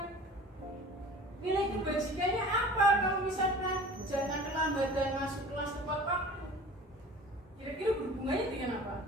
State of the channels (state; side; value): normal; both; correlation 0.42